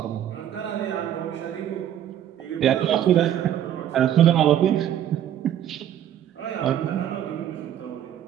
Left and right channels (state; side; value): quieter; left; 10.7 dB